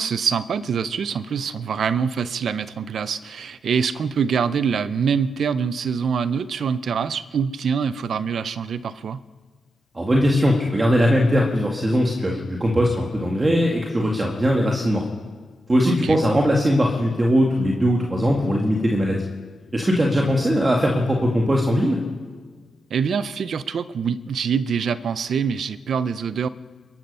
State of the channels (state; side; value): normal; both; correlation 0.87